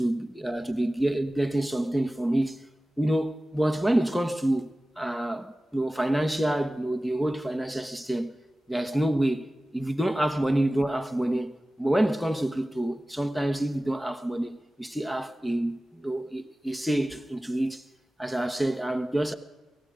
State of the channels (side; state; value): both; normal; correlation 0.97